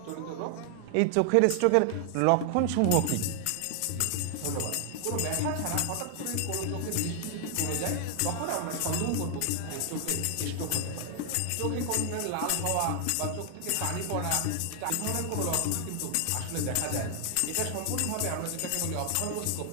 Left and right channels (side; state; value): both; different; correlation 0.00